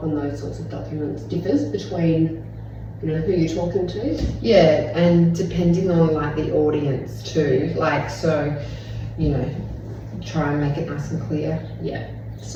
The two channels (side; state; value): both; identical; correlation 1.00